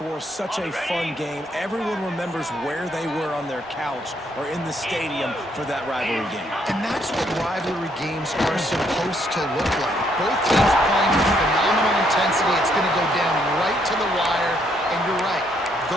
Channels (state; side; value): normal; both; correlation 0.71